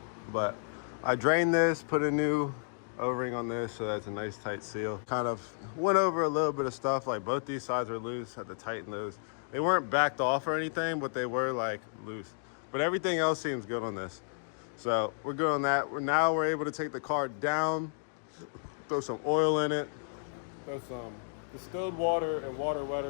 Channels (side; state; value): right; silent; digital silence